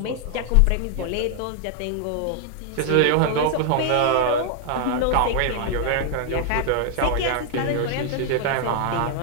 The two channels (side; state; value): both; different; correlation 0.00